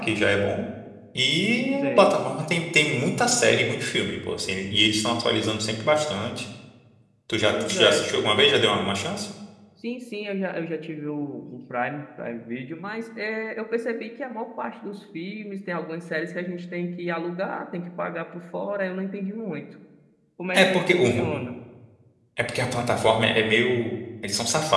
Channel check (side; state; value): both; identical; correlation 1.00